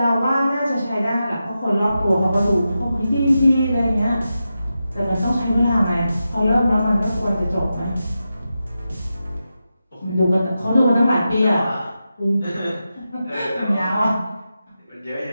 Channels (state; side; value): inverted; both; correlation -0.90